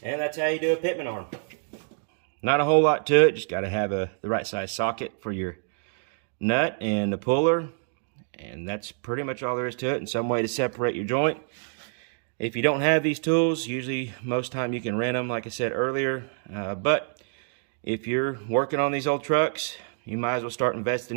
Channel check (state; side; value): silent; left; 60 dB below the other